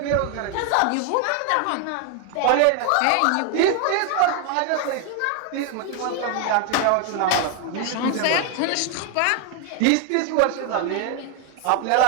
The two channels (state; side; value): different; both; correlation 0.01